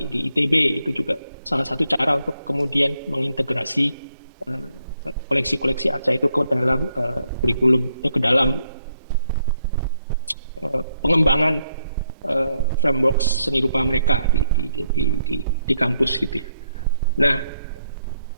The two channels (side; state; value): both; inverted; correlation -0.77